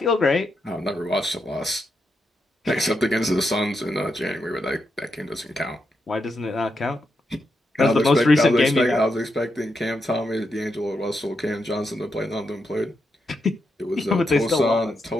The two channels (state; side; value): normal; both; correlation 0.84